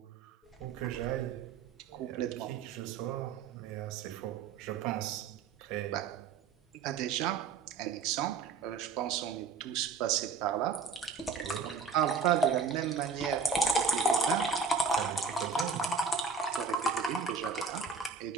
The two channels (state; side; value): quieter; left; 5.1 dB